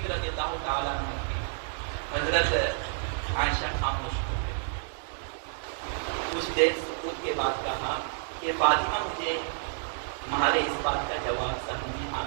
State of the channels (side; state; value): left; silent; digital silence